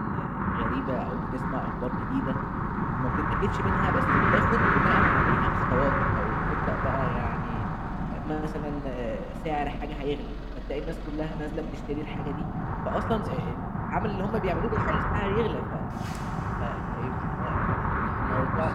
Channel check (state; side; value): identical; both; correlation 1.00